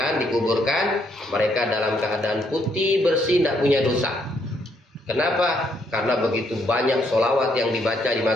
dikuburkan, mereka dalam keadaan putih, bersih, tidak punya dosa. Kenapa? Karena begitu banyak solawat yang dibaca di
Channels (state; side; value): normal; both; correlation 0.72